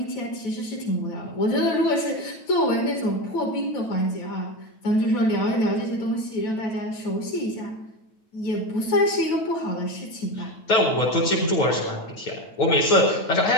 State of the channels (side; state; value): right; late; 9.1 ms